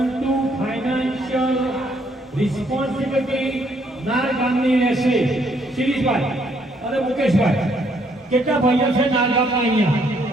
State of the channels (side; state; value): both; normal; correlation 0.69